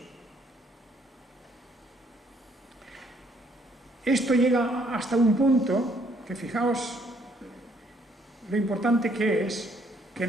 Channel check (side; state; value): both; normal; correlation 0.67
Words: Esto llega hasta un punto que, fijaos lo importante que es que